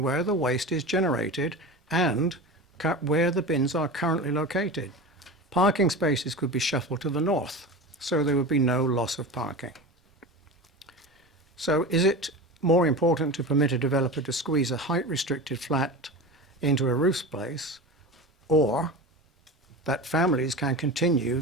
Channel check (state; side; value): normal; both; correlation 0.29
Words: where the waste is generated and where the bins are currently located. Parking spaces could be shuffled to the north, so there would be no loss of parking. So is it more important to permit a developer to squeeze a height-restricted flat into a roof space, or that families can continue